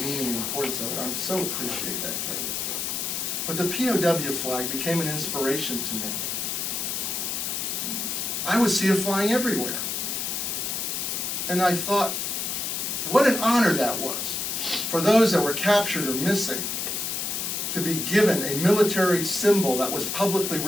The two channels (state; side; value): noise; left; hiss, 2 dB below the sound